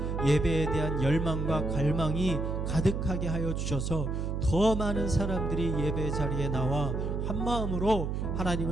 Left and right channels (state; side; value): noise; right; hum, 1 dB below the sound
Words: 예배에 대한 열망과 갈망이 가득하게 하여 주셔서 더 많은 사람들이 예배 자리에 나와 한 마음으로